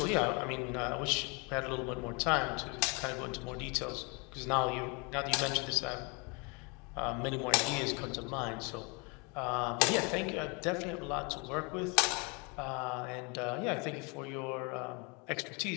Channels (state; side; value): quieter; right; 31.2 dB